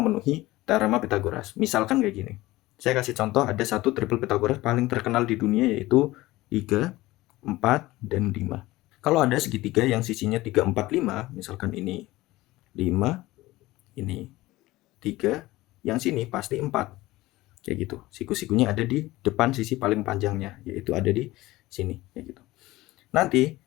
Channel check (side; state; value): right; quieter; 18.4 dB